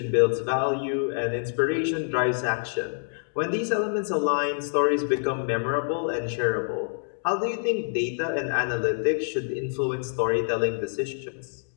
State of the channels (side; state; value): right; silent; digital silence